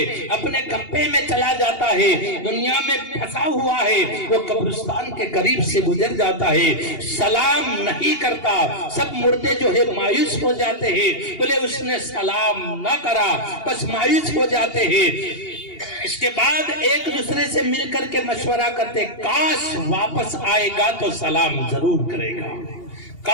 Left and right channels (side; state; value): right; late; 2.8 ms